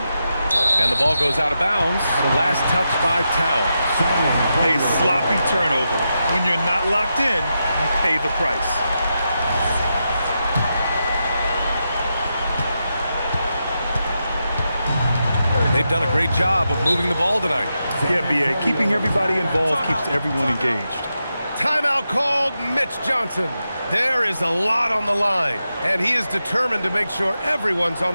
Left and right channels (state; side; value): inverted; both; correlation -0.87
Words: And the ball goes out of bounds. Last touch by Towns. A sloppy turnover. When you're not locked in, you pay the price. They've done a great job of moving the ball tonight. Yeah, B.A. Keeping everybody involved keeps everyone engaged. Timeout called, Mitch Johnson. There is a lot on the line, and he is determined to make sure everyone's on